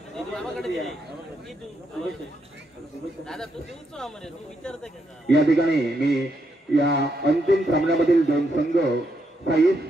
या ठिकाणी मी या अंतिम सामन्यामधील दोन संघ साई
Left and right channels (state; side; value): normal; both; correlation 0.79